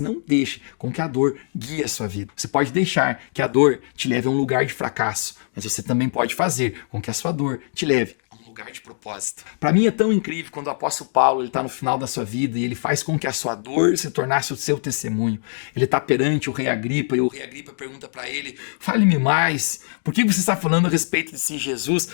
deixe com que a dor guie a sua vida. Você pode deixar que a dor te leve a um lugar de fracasso, mas você também pode fazer com que a sua dor te leve a um lugar de propósito. Para mim é tão incrível quando o apóstolo Paulo está no final da sua vida e ele faz com que a sua dor se tornasse o seu testemunho. Ele está perante o rei Agripa e o rei Agripa pergunta para ele: fale-me mais, por que você está falando a respeito desse Jesus?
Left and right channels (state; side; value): silent; right; digital silence